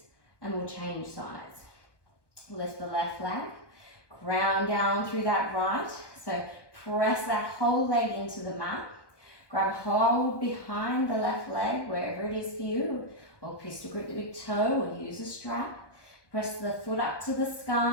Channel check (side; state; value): right; late; 1.1 ms